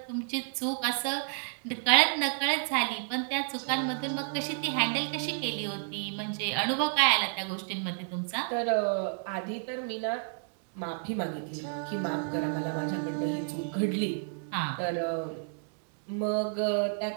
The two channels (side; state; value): left; silent; 57 dB below the other